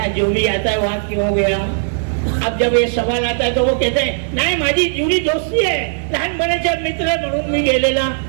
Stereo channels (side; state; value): left; silent; digital silence